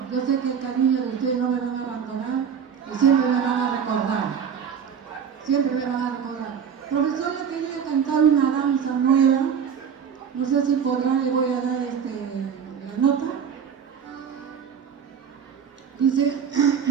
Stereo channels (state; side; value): quieter; left; 7.4 dB